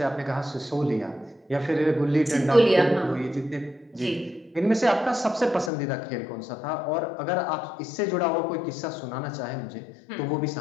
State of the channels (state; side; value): drops out; right; at 5.7 s